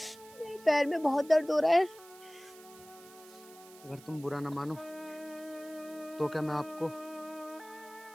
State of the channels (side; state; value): right; noise; hiss, 21 dB below the sound